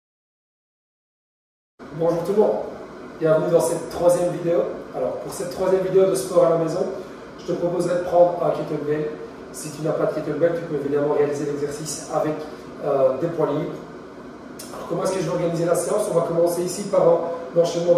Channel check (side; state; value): both; identical; correlation 1.00